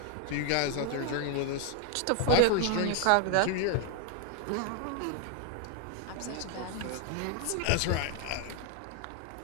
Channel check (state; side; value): different; both; correlation 0.00